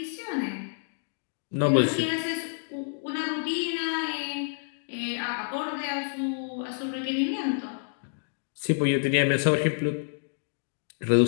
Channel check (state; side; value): silent; right; digital silence